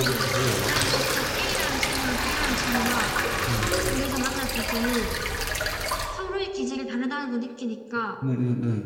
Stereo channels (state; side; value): identical; both; correlation 1.00